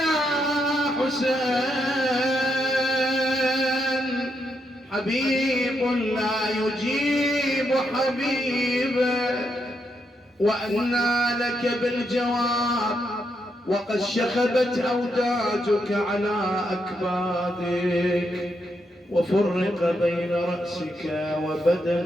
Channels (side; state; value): both; normal; correlation 0.80